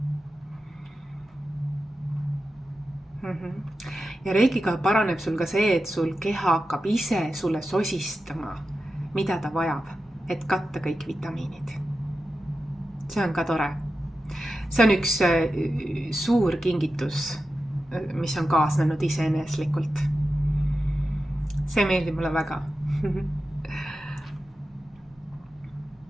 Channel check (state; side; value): normal; both; correlation 0.91